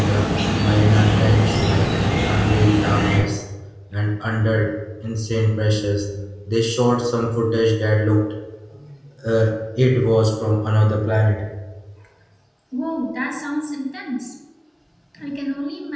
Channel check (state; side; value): identical; both; correlation 1.00